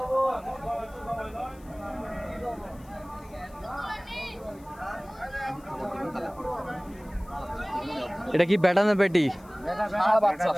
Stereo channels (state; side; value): noise; left; hiss, 27 dB below the sound